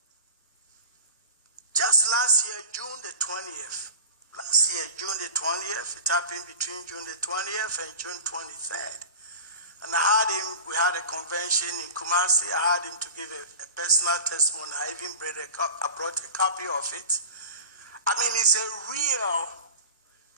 just last year, June the 20th. Last year, June the 20th, it happened between June the 20th and June 23rd. And we had a convention in Kumasi. I had him to give a personal testimony. I even brought a copy of it. I mean, it's a real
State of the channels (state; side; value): inverted; both; correlation -0.36